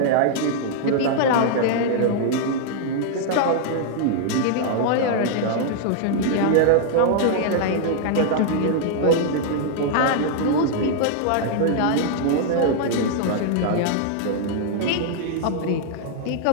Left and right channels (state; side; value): different; both; correlation -0.01